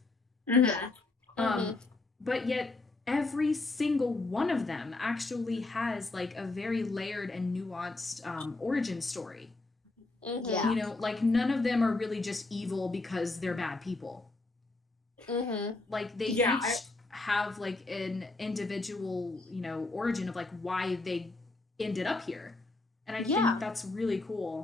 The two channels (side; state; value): right; quieter; 3.2 dB